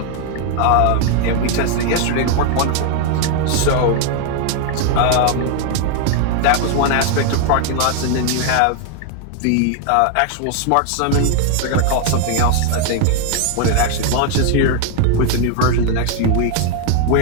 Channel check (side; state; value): both; different; correlation 0.00